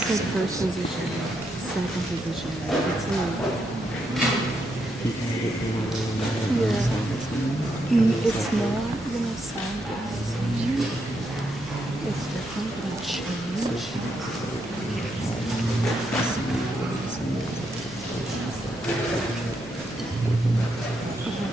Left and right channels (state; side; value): normal; both; correlation 0.80